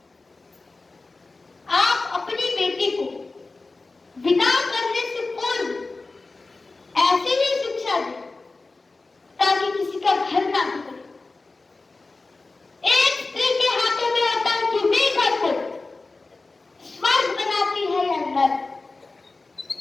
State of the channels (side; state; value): right; quieter; 3.6 dB